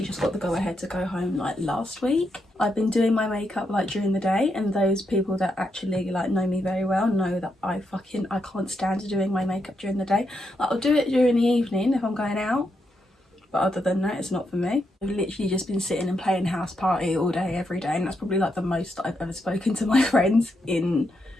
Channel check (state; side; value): normal; both; correlation 0.82